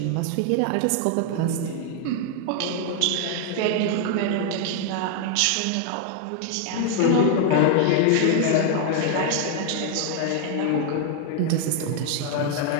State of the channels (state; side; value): different; both; correlation 0.00